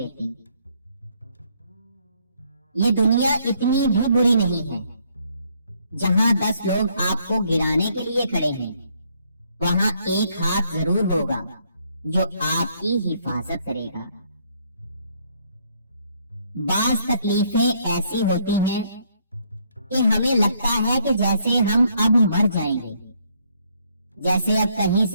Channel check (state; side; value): inverted; both; correlation -0.69